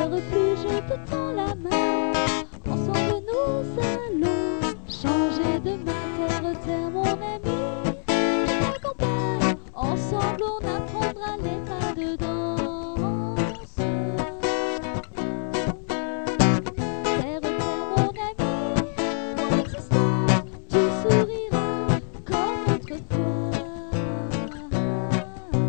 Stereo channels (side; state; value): right; silent; 61 dB below the other